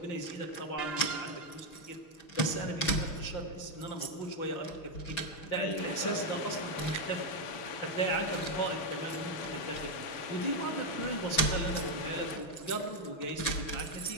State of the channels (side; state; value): right; late; 6.2 ms